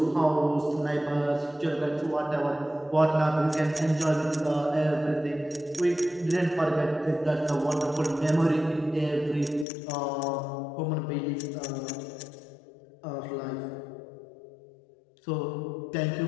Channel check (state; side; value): drops out; right; at 9.7 s